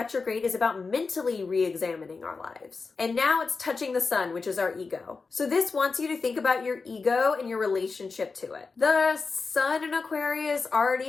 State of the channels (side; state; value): right; quieter; 4.4 dB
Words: is about mentally re-examining our lives. And now it's touching the Sun, which is our ego. So this wants you to think about your ego and your relationship to it. The Sun in Aquarius